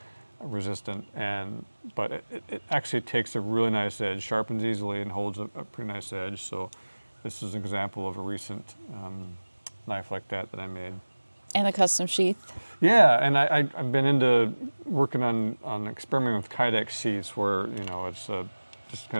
but it actually takes a really nice edge, sharpens easily, and holds a pretty nice edge. So this is an example of a recent knife like that I made. And a custom sheath. Yeah, and I've been into working on experimenting with Kydex sheaths where it's just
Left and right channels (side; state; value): both; inverted; correlation -1.00